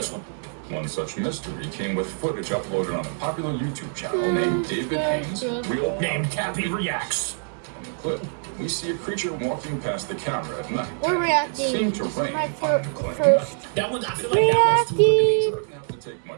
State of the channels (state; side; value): silent; left; digital silence